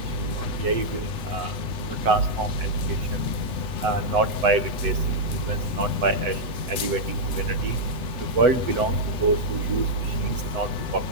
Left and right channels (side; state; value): left; late; 8.0 ms